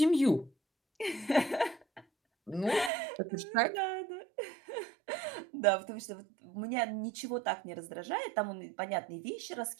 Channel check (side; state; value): left; drops out; at 2.9 s